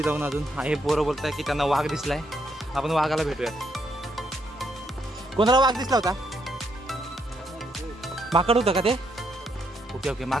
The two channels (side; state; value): both; normal; correlation 0.76